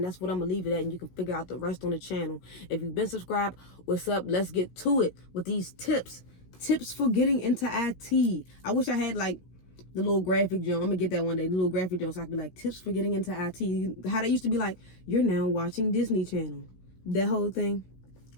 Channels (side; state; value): right; late; 16 ms